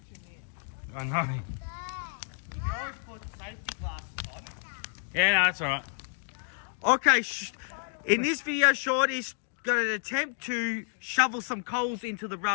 I know. You always put safety glasses on. Yeah, no, that's all right. Okay, in this video, Shorty's got an attempt to shovel some coals into the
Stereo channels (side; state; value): right; silent; digital silence